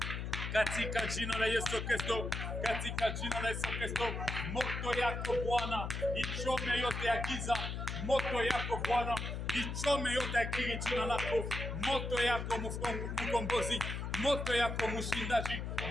katika jina la Yesu Kristo, katika jina la Yesu Kristo. Moto yako Bwana ichome yote ya giza, moto yako Bwana ichome yote ya kili jina lako, moto yako mkombozi, moto yako mshindaji,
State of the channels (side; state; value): left; noise; hum, 4 dB below the sound